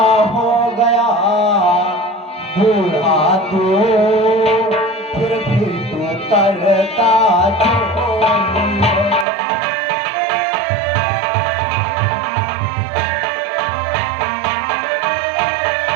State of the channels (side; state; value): left; drops out; at 9.2 s